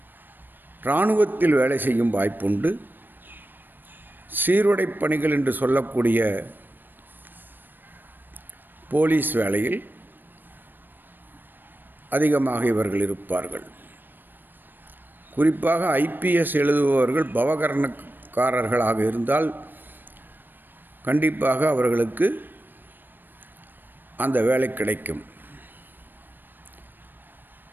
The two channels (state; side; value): late; left; 0.093 ms